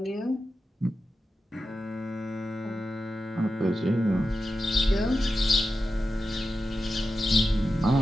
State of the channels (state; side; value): normal; both; correlation 0.91